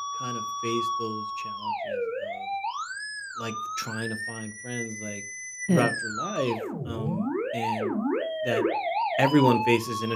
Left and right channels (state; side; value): identical; both; correlation 1.00